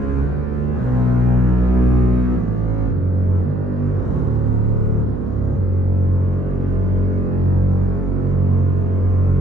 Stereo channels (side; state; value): right; noise; hum, 8 dB below the sound